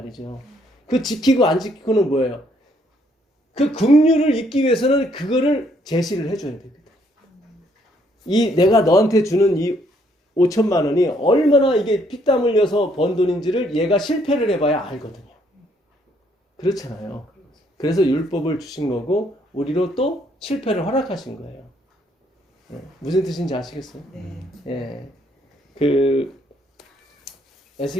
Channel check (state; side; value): normal; both; correlation 0.69